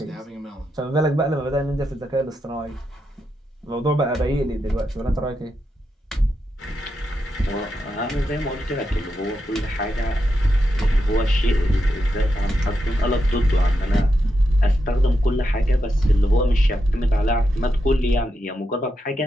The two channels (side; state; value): both; normal; correlation 0.85